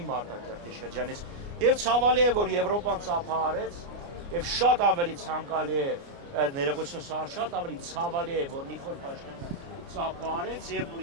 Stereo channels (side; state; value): left; late; 29 ms